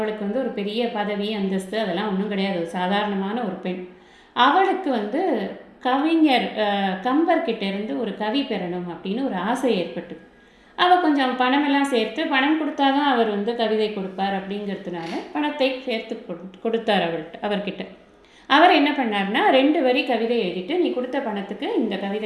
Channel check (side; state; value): both; identical; correlation 1.00